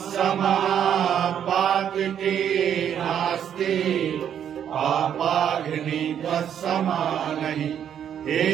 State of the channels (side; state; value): left; quieter; 9.1 dB